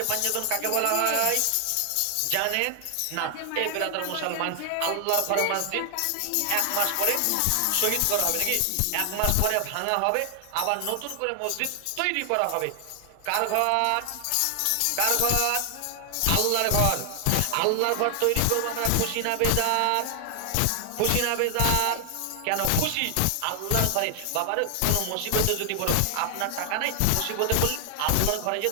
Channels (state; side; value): different; both; correlation 0.00